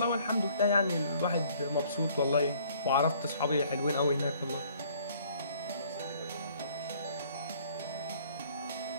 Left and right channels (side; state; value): both; inverted; correlation -0.59